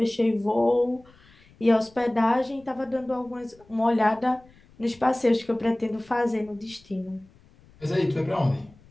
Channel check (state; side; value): noise; left; rumble, 28 dB below the sound